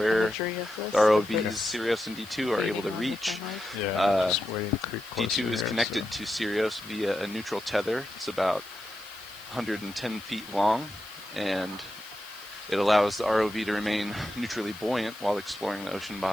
the ROVs Sirius and D2 are able to reach. Just waiting to creep closer D2 is here, connected to Sirius via a neutral tether. It's about 110 feet long, and it allows the ROV to remain neutrally buoyant while exploring the ocean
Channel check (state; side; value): noise; left; hiss, 21 dB below the sound